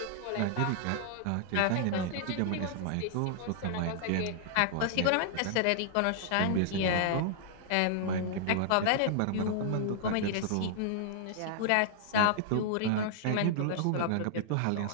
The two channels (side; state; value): both; different; correlation -0.01